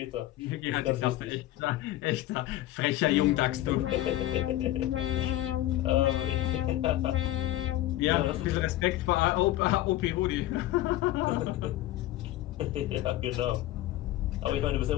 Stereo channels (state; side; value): quieter; right; 15.1 dB